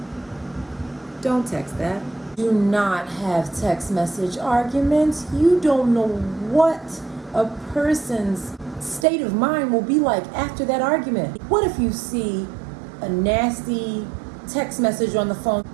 Don't text that. Do not have text message arguments. You don't know what a person's state of mind will be like after that argument. What if you see a nasty text message on the phone?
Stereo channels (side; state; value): left; drops out; at 9.1 s